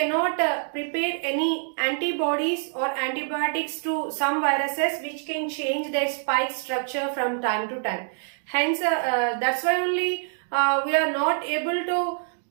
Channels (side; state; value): left; silent; digital silence